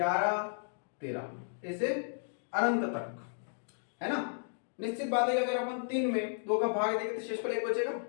13 ऐसे अनंत तक, है ना। निश्चित बात है कि अगर अपन 3 में 2 का भाग देंगे तो शेषफल 1 बचेगा।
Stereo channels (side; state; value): right; silent; digital silence